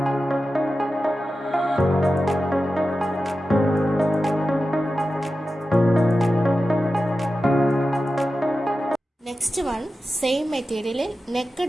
നെക്സ്റ്റ് വൺ സെയിം മെറ്റീരിയലിൽ നെക്ക്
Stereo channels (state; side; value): normal; both; correlation 0.93